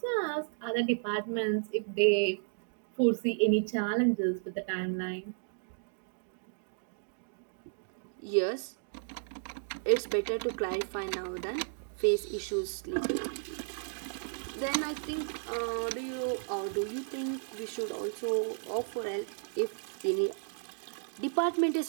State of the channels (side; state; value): left; silent; digital silence